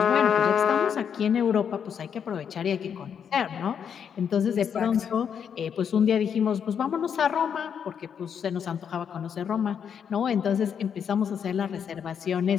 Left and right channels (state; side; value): quieter; right; 7.7 dB